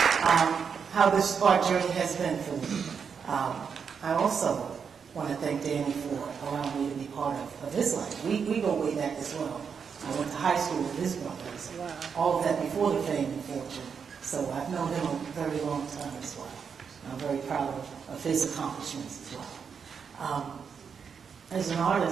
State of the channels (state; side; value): quieter; left; 6.5 dB